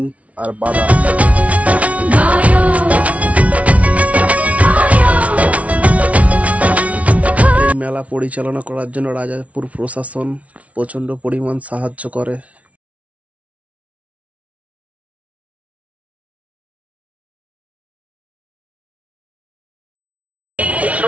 আর বাদাম। এই মেলা পরিচালনা করার জন্য রাজাপুর প্রশাসন প্রচন্ড পরিমাণ সাহায্য করে।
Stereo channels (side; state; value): left; late; 0.066 ms